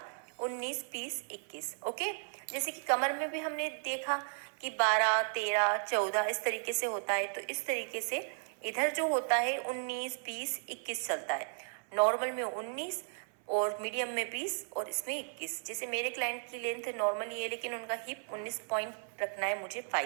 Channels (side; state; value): left; silent; 54 dB below the other